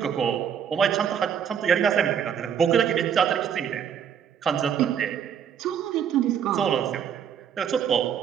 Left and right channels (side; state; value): left; quieter; 8.2 dB